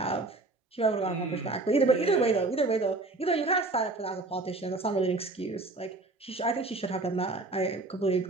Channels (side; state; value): left; quieter; 3.3 dB